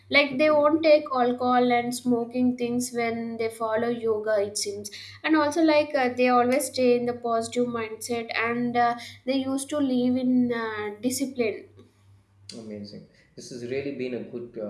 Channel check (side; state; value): both; identical; correlation 1.00